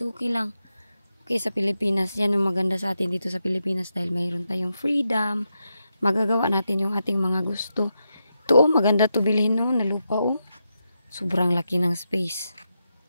okay lang. Okay, sa Pilipinas, yan yung maganda sa atin dito sa Pilipinas dahil mayroon tayong freedom. Magagawa natin yung ating mga gusto. Ito, oh, maganda to bilhin, no, na lupa, oh. Sobrang laki ng space.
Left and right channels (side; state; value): both; inverted; correlation -0.86